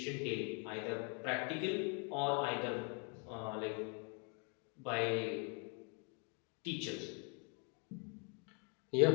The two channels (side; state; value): right; quieter; 36.4 dB